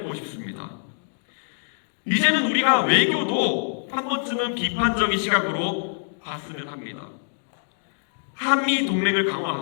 싶습니다. 이제는 우리가 외교도 한 번쯤은 비판적인 시각으로 봤으면 합니다. 한미 동맹을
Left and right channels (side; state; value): right; silent; digital silence